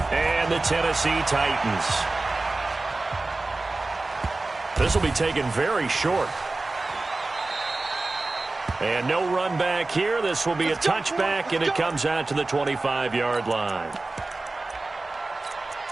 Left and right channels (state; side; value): quieter; left; 3.2 dB